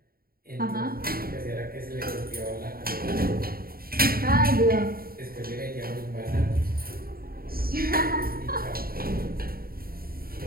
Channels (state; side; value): late; left; 0.43 ms